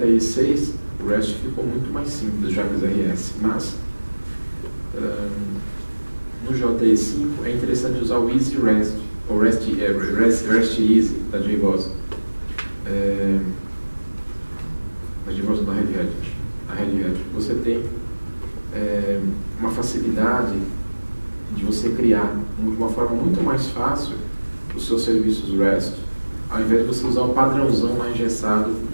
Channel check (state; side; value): inverted; both; correlation -1.00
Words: o REST ficou muito mais simples, já que o RS, mas no JE5 é interessante usar o Easy REST, ou REST Easy da JBoss. Da JBoss da Red Hat. Você tem uma facilidade de você criar de uma forma muito mais fácil os seus serviços REST, ao invés de você usar o padrãozão lá engessado